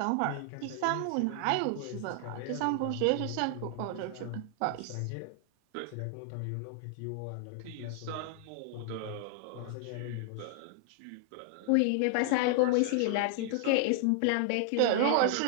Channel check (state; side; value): different; both; correlation 0.00